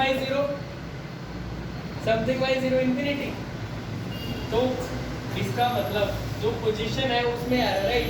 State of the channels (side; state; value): both; identical; correlation 1.00